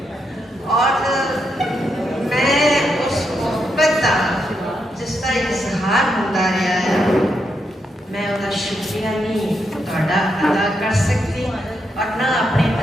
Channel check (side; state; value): both; normal; correlation 0.81